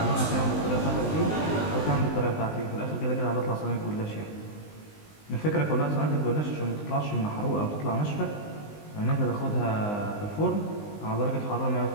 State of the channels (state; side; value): late; right; 19 ms